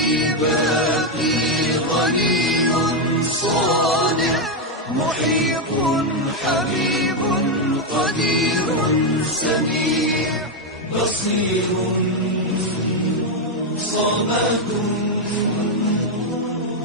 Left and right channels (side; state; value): both; normal; correlation 0.04